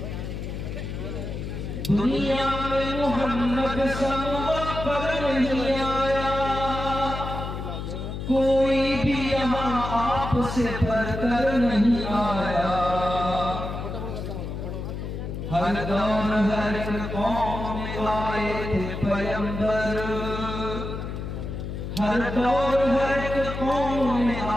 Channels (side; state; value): left; noise; hum, 6 dB below the sound